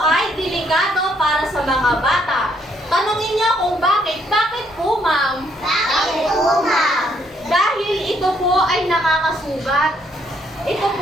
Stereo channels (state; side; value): normal; both; correlation 0.70